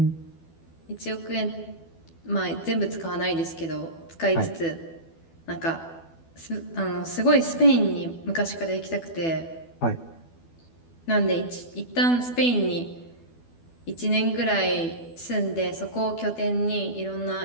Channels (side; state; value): right; late; 12 ms